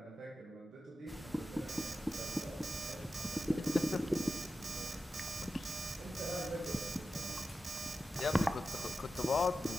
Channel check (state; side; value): normal; both; correlation 0.92